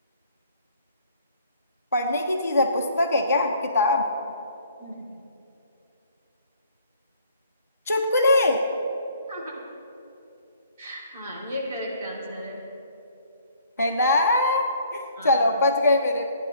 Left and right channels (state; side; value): inverted; both; correlation -0.59